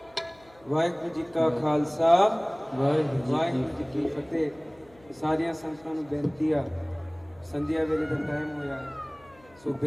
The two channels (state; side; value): noise; left; hum, 28 dB below the sound